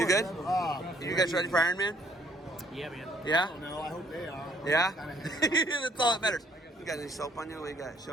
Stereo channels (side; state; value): both; normal; correlation 0.63